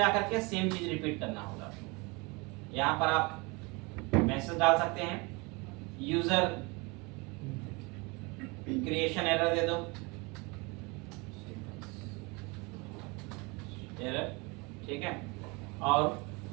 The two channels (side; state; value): left; quieter; 27.4 dB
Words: के सेम चीज रिपीट करना होगा। यहाँ पर आप मैसेज डाल सकते हैं, यूजर क्रिएशन एरर दे दो, एरर, ठीक है। और